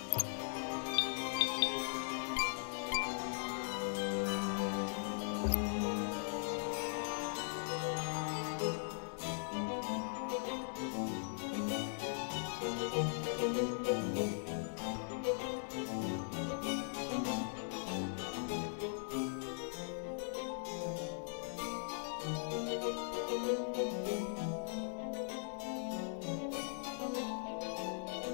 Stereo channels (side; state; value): right; silent; digital silence